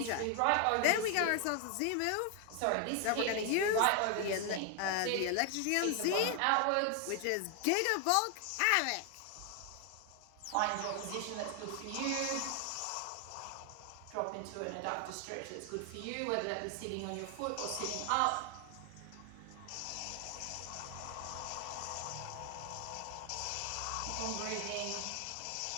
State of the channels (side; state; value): both; different; correlation 0.00